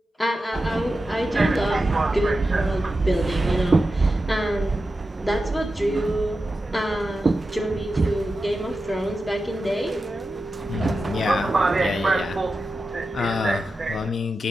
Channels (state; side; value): normal; both; correlation 0.92